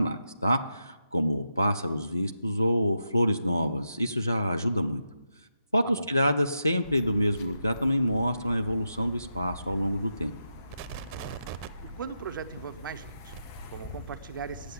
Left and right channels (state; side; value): inverted; both; correlation -0.86